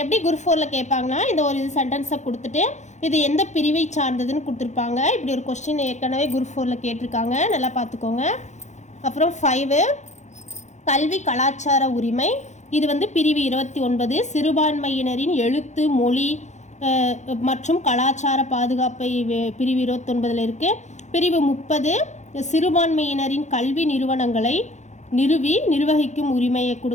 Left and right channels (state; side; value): late; right; 0.34 ms